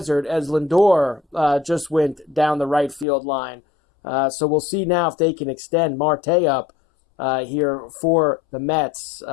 as Lindor just went down the right field line. So we'll see now if they can extend Marte up here for the Mets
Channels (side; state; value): right; drops out; at 3.1 s